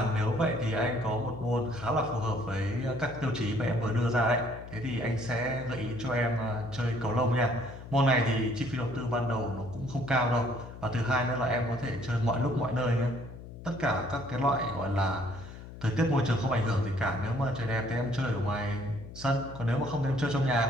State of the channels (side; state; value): left; noise; hum, 14 dB below the sound